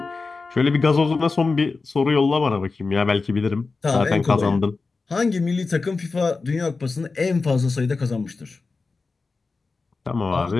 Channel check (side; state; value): right; quieter; 4.1 dB